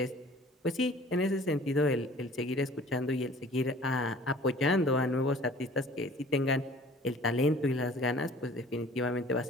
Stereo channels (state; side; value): normal; both; correlation 0.49